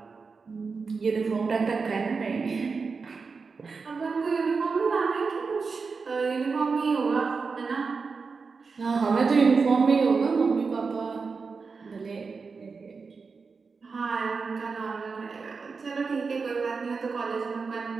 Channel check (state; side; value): quieter; left; 4.8 dB